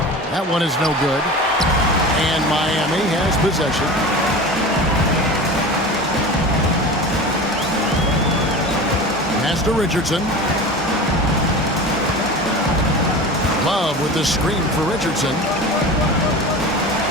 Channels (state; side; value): normal; both; correlation 0.32